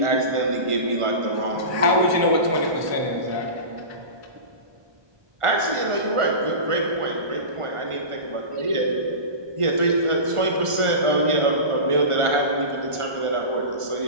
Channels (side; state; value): left; late; 1.4 ms